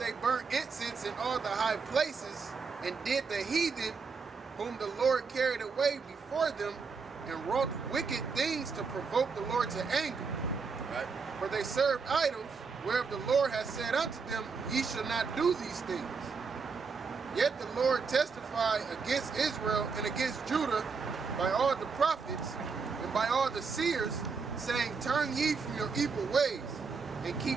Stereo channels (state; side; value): quieter; left; 5.1 dB